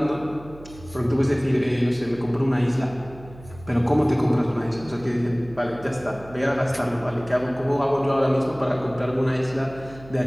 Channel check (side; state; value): right; noise; hum, 19 dB below the sound